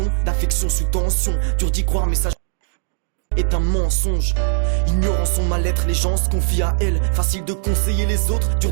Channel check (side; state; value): left; silent; 66 dB below the other